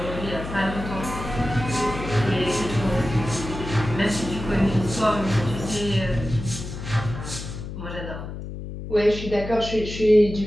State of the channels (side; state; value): left; noise; hum, 9 dB below the sound